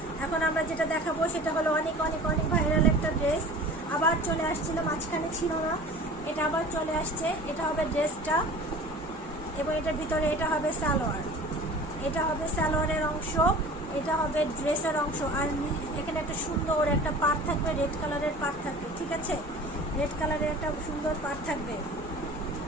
এখন আমরা যেটা দেখাবো সেটা হলো অনেক অনেক অনেক ভাইরাল একটা ড্রেস। আবার চলে আসছিল, মাঝখানে ছিল না, এটা আবার চলে আসছে। এটা হবে ড্রেসটা এবং এটার ভিতরে এটা হবে সালোয়ার। এটা হবে সালোয়ারের অংশ, এটা হবে ড্রেসের অংশ। আর এখানে একটা সুন্দর একটা পাড় থাকবে, রেড কালারের পাড় থাকবে, ঠিক আছে। রেড কালারের একটা সুন্দর পাড় থাকবে।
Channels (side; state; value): both; normal; correlation 0.41